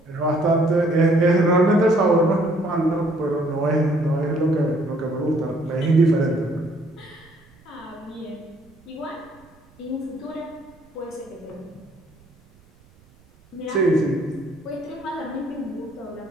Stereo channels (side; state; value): right; noise; rumble, 29 dB below the sound